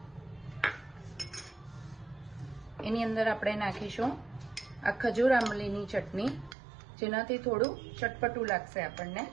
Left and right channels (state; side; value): drops out; left; at 6.6 s